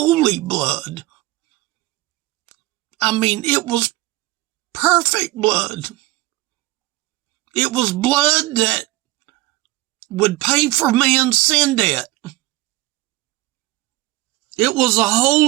blood. I mean, it was perfect blood. It was blood that would pay for man's sin debt. It was a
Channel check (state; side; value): quieter; left; 17.9 dB